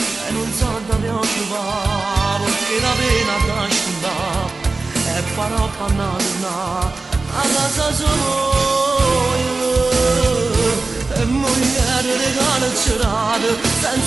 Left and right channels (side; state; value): left; quieter; 3.6 dB